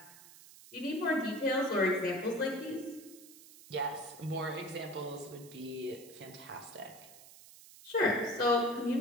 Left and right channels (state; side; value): noise; right; hiss, 19 dB below the sound